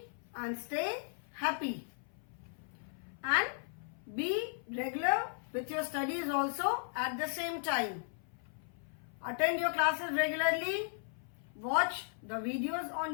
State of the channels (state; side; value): silent; right; 53 dB below the other